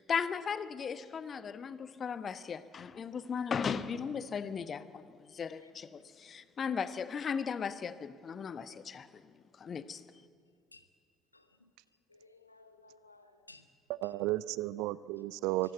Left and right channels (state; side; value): normal; both; correlation 0.57